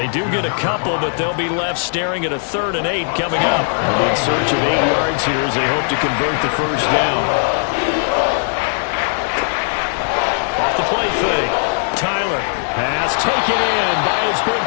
do get a couple, but they'll be left staring at a 3rd and 8 coming up. In search of 8 yards here as they hope to convert the first down. Off the play fake. Tyler. Pass taken in by his big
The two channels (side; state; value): right; silent; digital silence